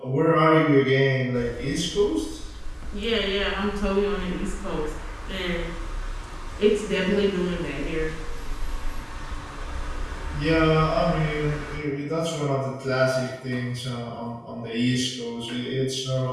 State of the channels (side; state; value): both; identical; correlation 1.00